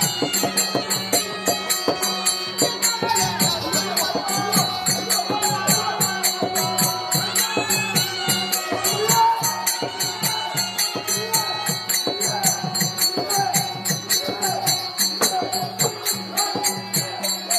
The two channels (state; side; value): identical; both; correlation 1.00